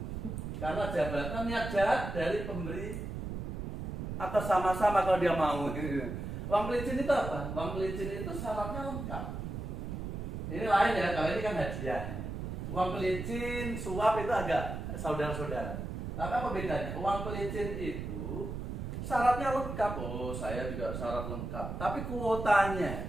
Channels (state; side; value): noise; right; rumble, 5 dB below the sound